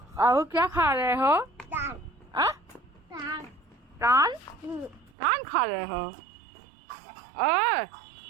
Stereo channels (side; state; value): left; drops out; at 5.2 s